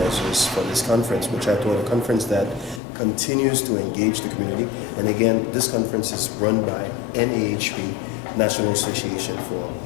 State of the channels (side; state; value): right; drops out; at 2.8 s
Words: for this conference, which I thought a conference that continues to engage the community. And again, this conference is run by NAHP, National Association for